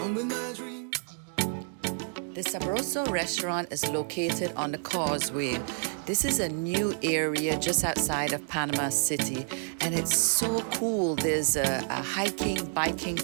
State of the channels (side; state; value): left; silent; 58 dB below the other